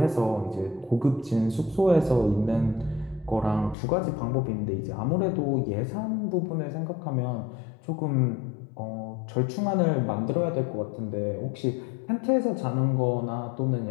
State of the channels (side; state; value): right; drops out; at 3.8 s